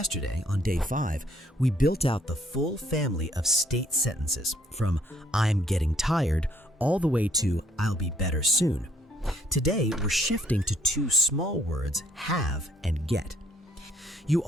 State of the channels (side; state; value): both; normal; correlation 0.65